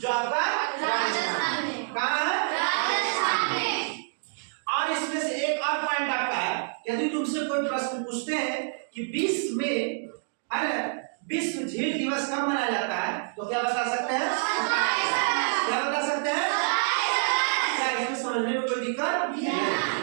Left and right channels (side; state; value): left; silent; digital silence